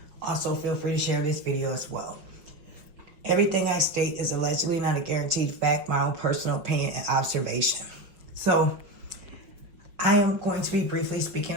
Also, feel free to share this video as well. Everything I state is allegedly not a guaranteed fact, my own personal opinion and observation. So, I am going to be briefly speaking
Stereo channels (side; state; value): left; late; 5.6 ms